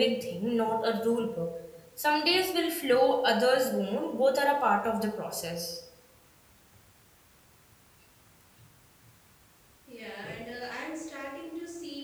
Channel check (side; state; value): both; identical; correlation 1.00